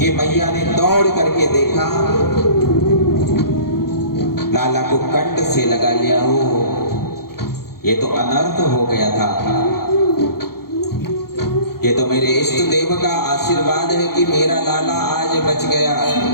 मैया ने दौड़ करके देखा, लाला को कंठ से लगा लिया। हो ये तो अनर्थ हो गया था। ये तो मेरे इष्ट देव का आशीर्वाद है कि मेरा लाला आज बच गया।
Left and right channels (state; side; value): late; right; 0.94 ms